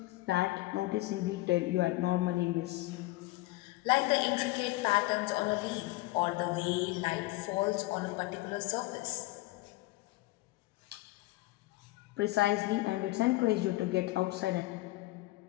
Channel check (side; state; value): right; quieter; 19.5 dB